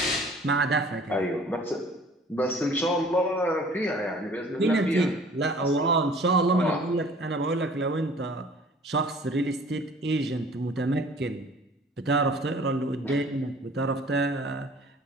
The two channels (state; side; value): normal; both; correlation 0.50